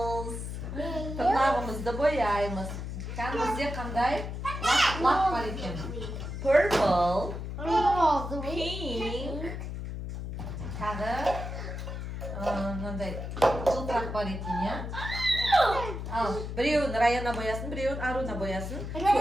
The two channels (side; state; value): left; noise; hum, 6 dB below the sound